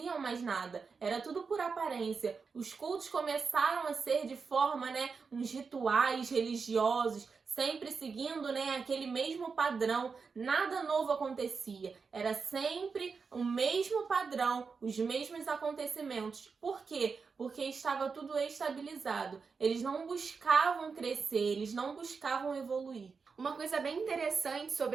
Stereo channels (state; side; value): quieter; left; 5.1 dB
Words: mais nada, era tudo por aparência. Os cultos começaram a ser de forma, né, uns rituais religiosos, sempre seguindo, né, aquele mesmo padrão. Nada novo acontecia. Era sempre o mesmo padrão, os mesmos acontecimentos. Por quê? Porque estava tudo estabilizado. Eles não buscavam crescer, eles não buscavam evoluir. Uma coisa bem interessante